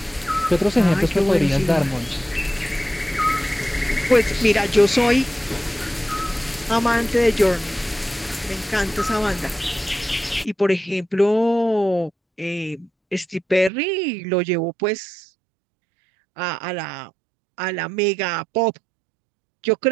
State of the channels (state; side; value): drops out; left; at 13.7 s